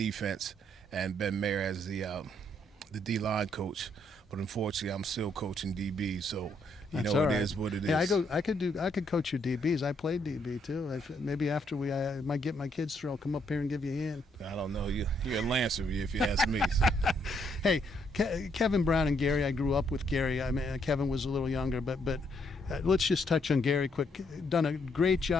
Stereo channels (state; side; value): normal; both; correlation 0.72